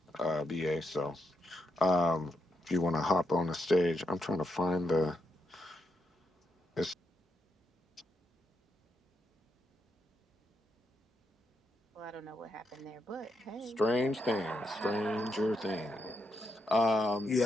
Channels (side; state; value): both; normal; correlation 0.82